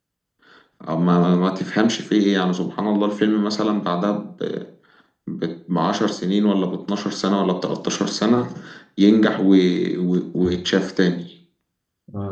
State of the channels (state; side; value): identical; both; correlation 1.00